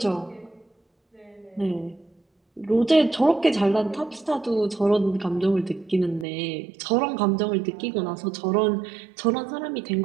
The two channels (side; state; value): left; drops out; at 6.2 s